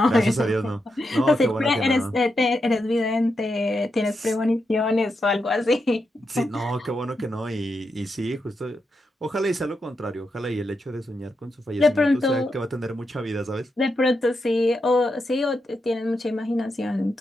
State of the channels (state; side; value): normal; both; correlation 0.85